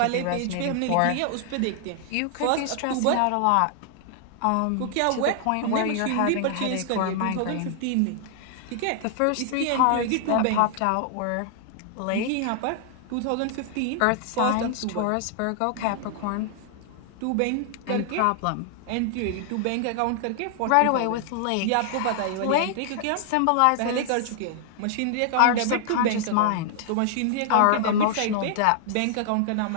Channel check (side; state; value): both; different; correlation 0.00